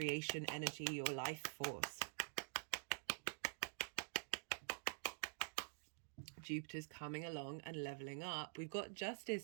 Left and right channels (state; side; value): silent; left; digital silence